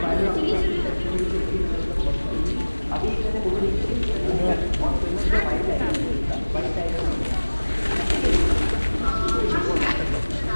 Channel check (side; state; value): both; inverted; correlation -1.00